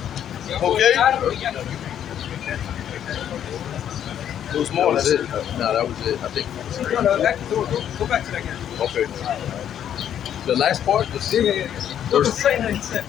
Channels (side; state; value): right; quieter; 9.9 dB